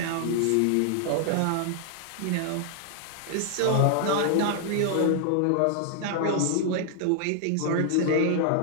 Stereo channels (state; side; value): different; both; correlation 0.00